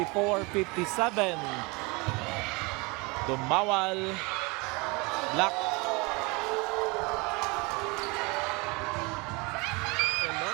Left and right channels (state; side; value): quieter; left; 27.0 dB